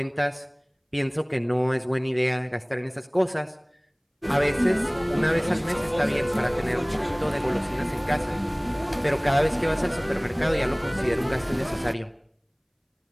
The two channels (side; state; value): both; identical; correlation 1.00